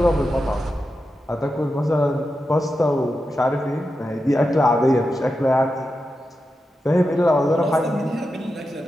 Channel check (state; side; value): normal; both; correlation 0.89